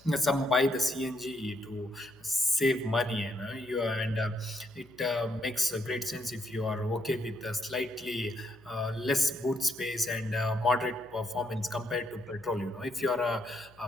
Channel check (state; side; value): noise; left; hum, 28 dB below the sound